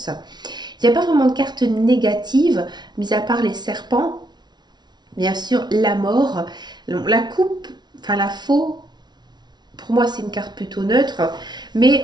Il n'y a pas vraiment de carte négative, mis à part les serpents, bien sûr la mort, la coupe, enfin la faux. Pour moi, c'est une carte plutôt neutre,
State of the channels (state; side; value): late; left; 0.20 ms